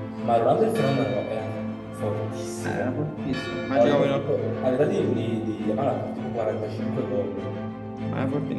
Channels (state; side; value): identical; both; correlation 1.00